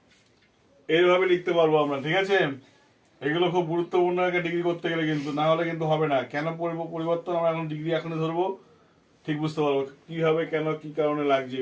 এইভাবে লিখতে পারবো আমরা। ঠিক আছে? এগুলো খুব গুরুত্বপূর্ণ একটা ডিগ্রি করতে গেলে, কিন্তু না হলে কিন্তু হবে না। কেন পরিবর্তন আমরা এখন ডিগ্রি এখনই ধরবো, ঠিক বুঝতে পারবো কিভাবে, কেন, কি কারণে লাগছে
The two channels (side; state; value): both; identical; correlation 1.00